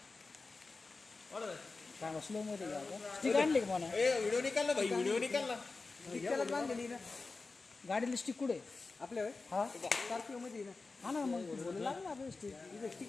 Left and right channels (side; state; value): right; quieter; 3.9 dB